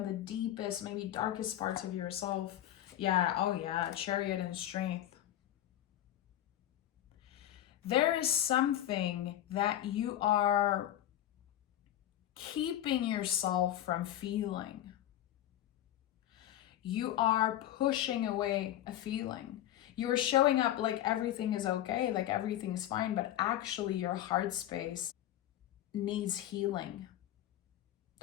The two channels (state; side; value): quieter; right; 12.5 dB